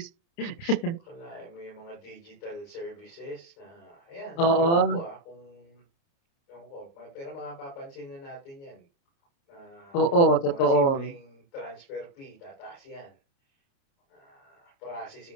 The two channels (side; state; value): right; late; 29 ms